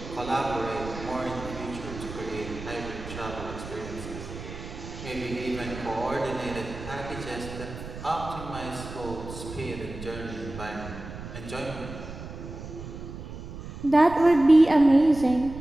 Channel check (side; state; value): right; noise; rumble, 11 dB below the sound